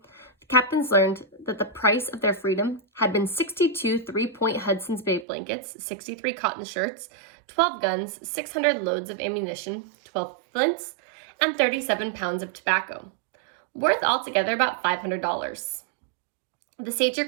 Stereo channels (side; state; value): left; drops out; at 5.2 s